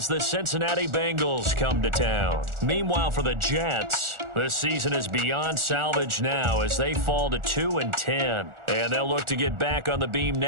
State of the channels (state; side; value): late; left; 1.4 ms